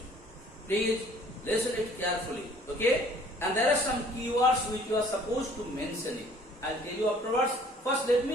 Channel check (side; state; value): both; normal; correlation 0.55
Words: Please listen it carefully, okay? And there are some keywords which you are supposed to mention it. I'll tell you afterwards. First, let